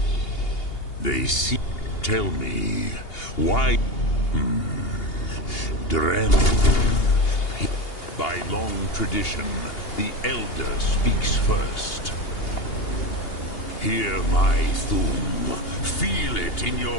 They see... Tell me, why... Drem... By long tradition, the Elder speaks first. Hear my Thum. Feel it in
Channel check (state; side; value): late; right; 2.8 ms